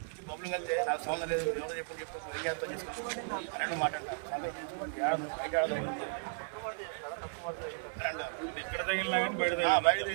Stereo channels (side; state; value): left; silent; digital silence